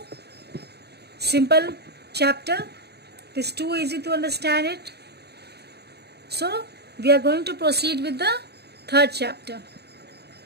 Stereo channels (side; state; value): left; late; 0.48 ms